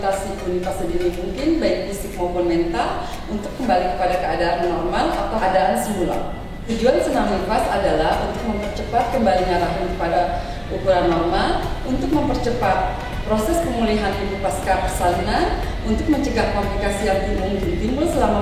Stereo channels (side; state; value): both; identical; correlation 1.00